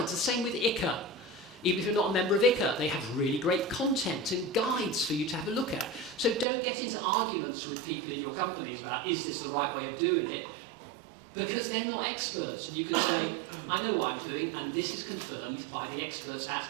the same with ICA. Even if you're not a member of ICA, they have really great content and guides for you to have a look at. So don't get into arguments with people in your companies about, is this the right way of doing it? Because they're not experts, and you can say, I know what I'm doing, and this is confirmed by the experts at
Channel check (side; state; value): left; drops out; at 6.5 s